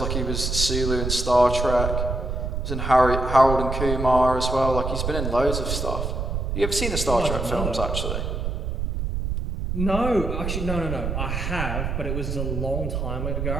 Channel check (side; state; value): right; noise; rumble, 2 dB below the sound